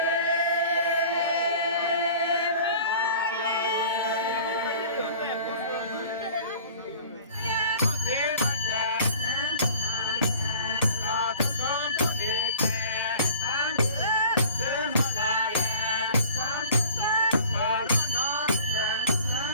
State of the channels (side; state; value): both; inverted; correlation -0.45